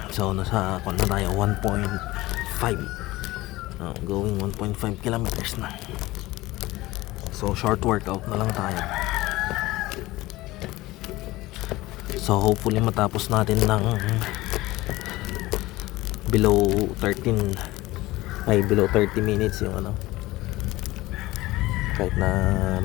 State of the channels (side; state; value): right; quieter; 18.7 dB